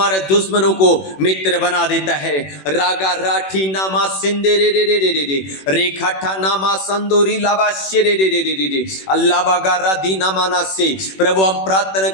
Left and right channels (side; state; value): right; late; 21 ms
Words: दुश्मनों को मित्र बना देता है। रागा राठी नामा सिंदे रे रे रे रे रे रे रेखाठा नामा संदोरी लाबा शे रे रे रे रे रे अल्लाह बागा राधी नामाना से। प्रभु हम प्रार्थना